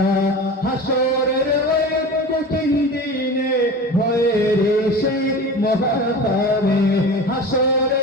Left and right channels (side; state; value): both; normal; correlation 0.33